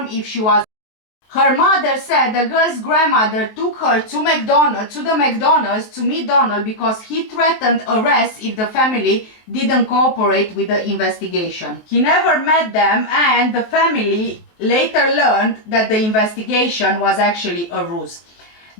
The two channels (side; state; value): right; late; 23 ms